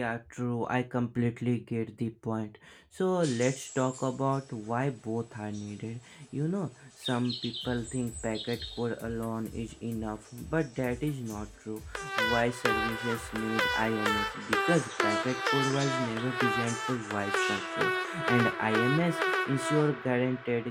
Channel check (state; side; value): identical; both; correlation 1.00